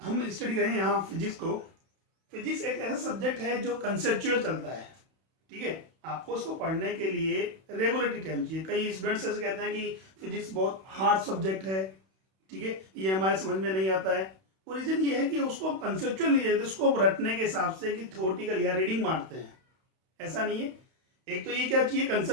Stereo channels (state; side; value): late; left; 32 ms